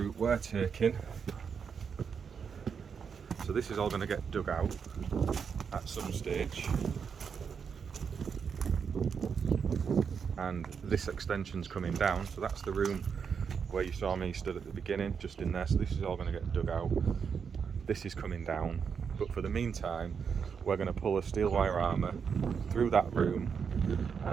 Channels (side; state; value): left; quieter; 6.5 dB